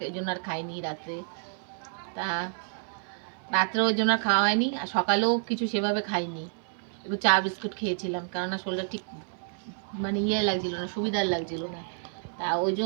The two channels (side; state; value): left; silent; 58 dB below the other